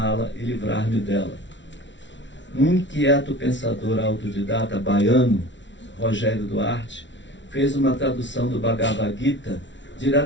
e livrar-me dela. Um inquieto pensador autodidata baiano, Rogério Duarte, fez uma tradução do Bhagavad Gita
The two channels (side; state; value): right; late; 0.54 ms